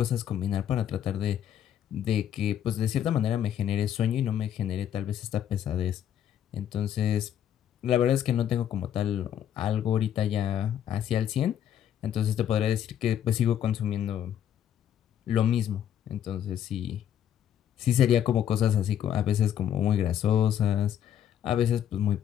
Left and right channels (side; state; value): right; quieter; 9.9 dB